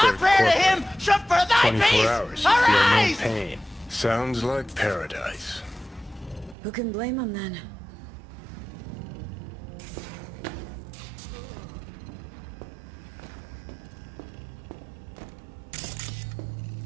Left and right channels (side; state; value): left; drops out; at 6.6 s